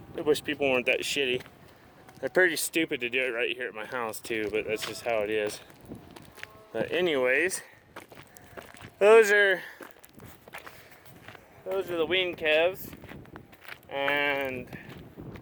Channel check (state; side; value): identical; both; correlation 1.00